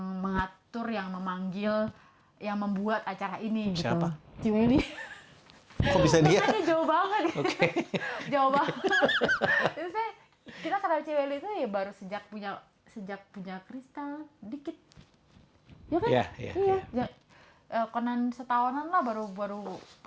mengatur, yang memanggil, yang membuat acara ini gitu. Siapa? Ciweli. Kok bisa dia? Makanya jauh banget. Oke. Jauh banget. Terus kita kenal Ciweli itu ya baru sejak punya kristal dikit. Ya kan? Iya. Ya, konan setahunan lah, baru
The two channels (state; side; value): identical; both; correlation 1.00